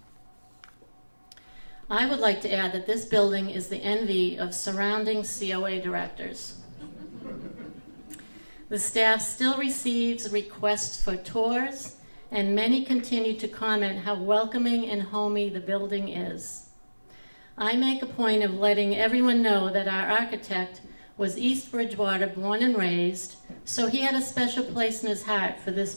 I would like to add that this building is the envy of surrounding COA directors. The staff still receives requests for tours, and many continue to comment how welcoming and homey the building is. I make a point of letting everyone know that our architect was East Bridgewater born and raised, so he had a special place in his heart for this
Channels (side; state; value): both; inverted; correlation -1.00